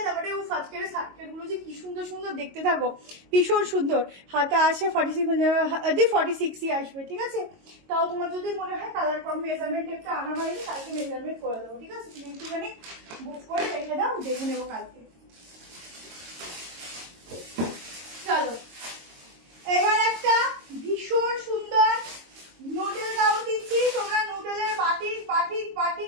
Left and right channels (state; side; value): late; left; 22 ms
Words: তারপরে ও আজকের সার্কেল গুলো যে কি সুন্দর সুন্দর দেখতে থাকো, ভীষণ সুন্দর। হাতে আসে 46ই আসবে। ঠিক আছে, তাও তোমার যদি মনে হয় কালার কম মেজারমেন্ট একটা আনা হয়নি, কালকে মেজারমেন্ট করে দেবো। ঠিক আছে, তুমি একটুখানি বুক করে রেখে দাও, দেখে নেবো কালকে। চলো এবার একটা ভীষণ সুন্দর নুডল গাউন দিচ্ছি। তোমরা নুডলের বাটিক বাটিক